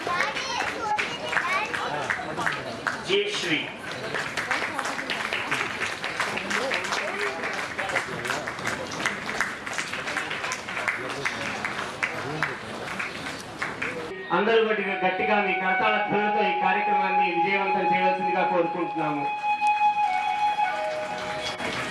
జయశ్రీ అందరూ గట్టిగా మీ కరతాళ ధ్వనులతో ఈ కార్యక్రమాన్ని విజయవంతం చేయవలసిందిగా కోరుకుంటున్నాము.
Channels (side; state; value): both; identical; correlation 1.00